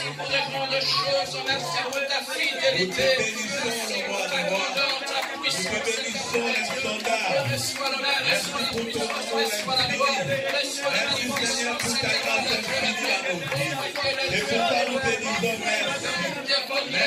pour de grandes choses. Merci pour ta fidélité. Merci pour ta grandeur, ta puissance. Reçois l'honneur, reçois la puissance, reçois la gloire, reçois la magnificence. Et pourquoi nous te disons merci. Merci pour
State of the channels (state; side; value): identical; both; correlation 1.00